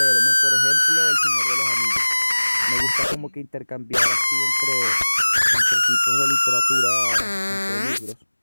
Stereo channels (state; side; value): inverted; both; correlation -1.00